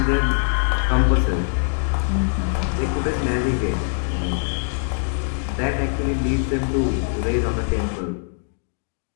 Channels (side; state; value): right; silent; digital silence